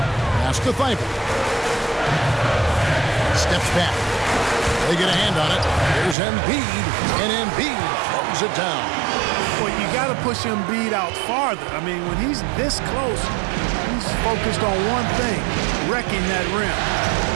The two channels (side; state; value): left; drops out; at 6.2 s